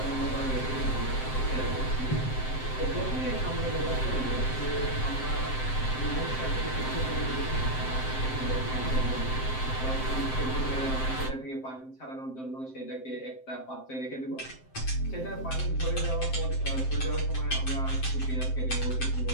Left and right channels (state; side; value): late; right; 7.7 ms